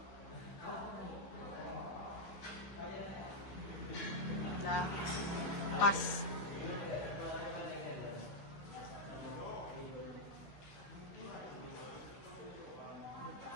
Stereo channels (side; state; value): right; late; 16 ms